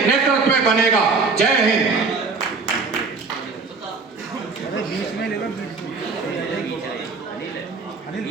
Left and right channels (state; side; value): quieter; left; 4.4 dB